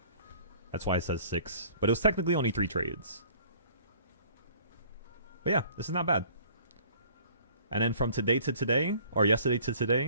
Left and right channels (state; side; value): inverted; both; correlation -0.53